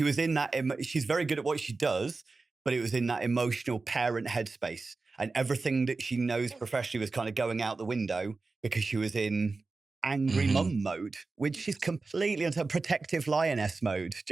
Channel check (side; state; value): left; quieter; 3.8 dB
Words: in that, she's very good at what she does, but it was in that emotional parent headspace. And everything that she knows professionally was kind of going out the window because she was in angry Hmm. mum mode, which is completely into protective lioness mode.